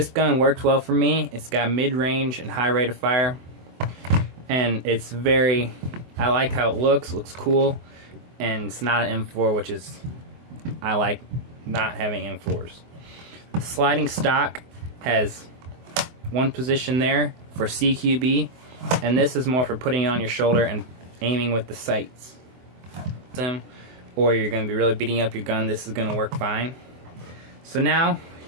gun works well for me. It's got mid-range and high rate of fire, and it's I like how it looks cool, and it's not an M4, which is, I like not having M4s. The sliding stock has one position there for CQB, and this is more for putting it on your shoulder and aiming with the sights. Or you're going to be really beating up your gun, this is going to work fine. So now,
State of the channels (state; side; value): late; left; 24 ms